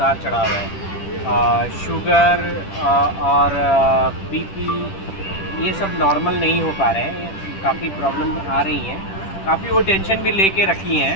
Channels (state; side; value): late; right; 10 ms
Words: चढ़ाव है। शुगर और बीपी ये सब नॉर्मल नहीं हो पा रहे हैं, काफ़ी प्रॉब्लम आ रही हैं। काफ़ी वो टेंशन भी लेके रखी हैं,